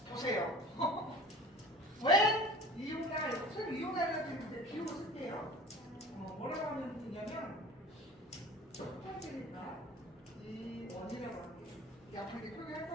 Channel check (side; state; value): both; normal; correlation 0.42